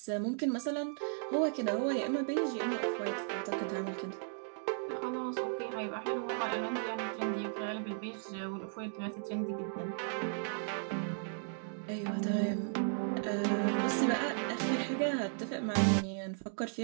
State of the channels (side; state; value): left; silent; digital silence